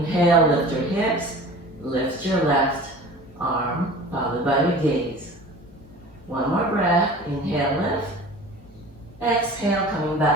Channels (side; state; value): both; normal; correlation 0.41